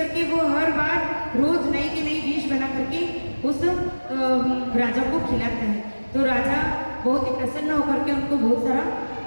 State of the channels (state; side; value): inverted; both; correlation -1.00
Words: वो हर बार रोज नई की नई डिश बना करके उस राजा को खिलाता है। तो राजा बहुत ही प्रसन्न होकर के उनको बहुत सारा